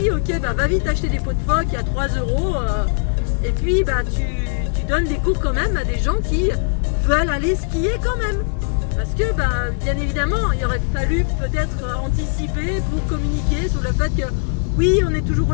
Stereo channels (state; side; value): silent; right; digital silence